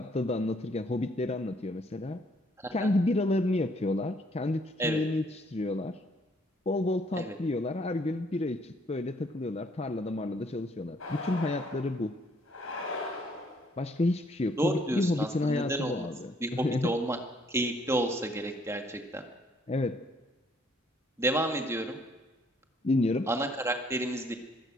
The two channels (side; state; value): both; normal; correlation 0.65